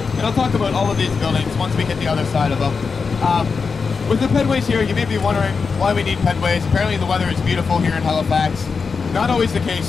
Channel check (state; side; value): quieter; right; 5.1 dB